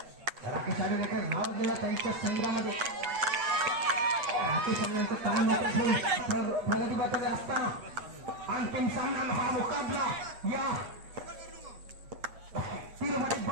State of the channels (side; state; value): left; late; 8.0 ms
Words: राकेश आडुलेकर नाव दिला त्यांच्या संघामध्ये। राकेश आडुलेकर काम प्रगती पत्र असताना अंतिम सामना हा मुकाबला या तिरुपती